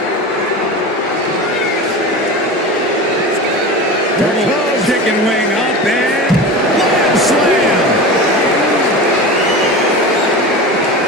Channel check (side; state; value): both; normal; correlation 0.29